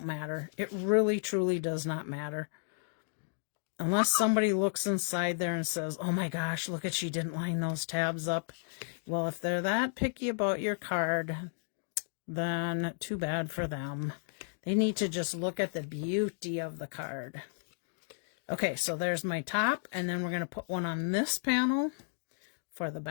matter. It really, truly does not matter. Unless somebody looks inside there and says, oh my gosh, look at, she didn't line those tabs up. Well, if they're that picky about your card, then too bad for them. They need to just look at the beauty of the card. Okay, so there's my top, and then we're going to put one on this panel for the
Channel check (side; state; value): right; silent; digital silence